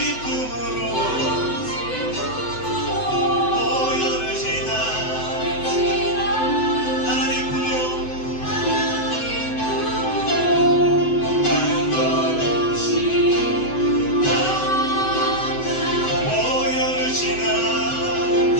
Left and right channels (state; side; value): late; right; 7.9 ms